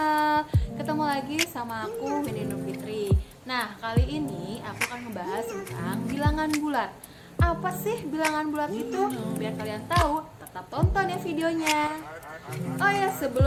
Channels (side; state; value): both; identical; correlation 1.00